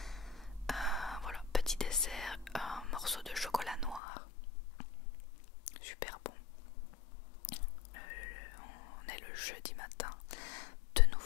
Voilà, petit dessert, un morceau de chocolat noir. Super bon. On est le jeudi matin. De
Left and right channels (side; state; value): right; drops out; at 4.0 s